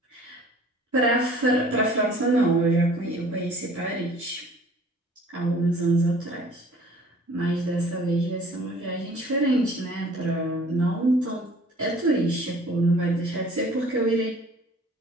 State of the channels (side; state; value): both; normal; correlation 0.51